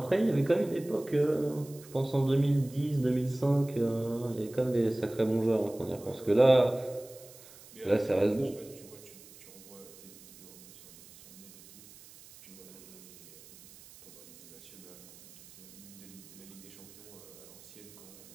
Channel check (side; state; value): right; noise; hiss, 20 dB below the sound